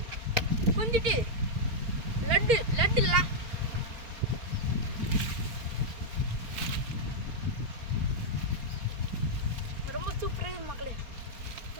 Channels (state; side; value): late; left; 4.4 ms